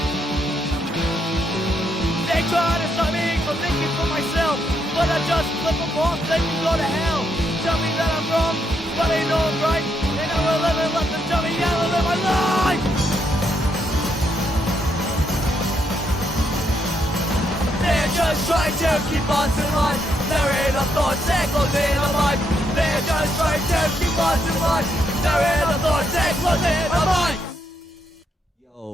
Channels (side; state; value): both; normal; correlation 0.77